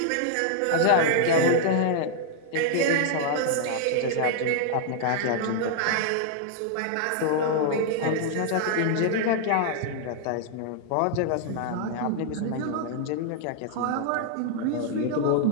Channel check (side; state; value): both; different; correlation -0.01